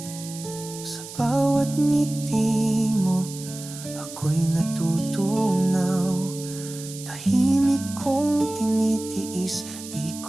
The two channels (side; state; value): right; noise; hiss, 13 dB below the sound